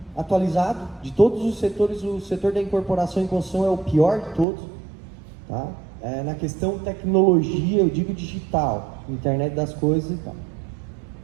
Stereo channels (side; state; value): left; drops out; at 4.5 s